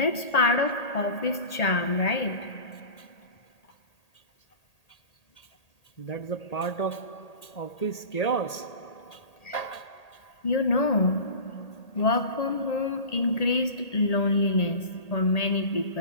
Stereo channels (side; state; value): right; late; 1.8 ms